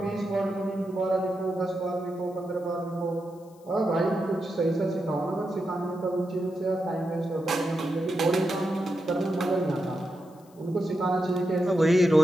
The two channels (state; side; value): noise; left; hiss, 30 dB below the sound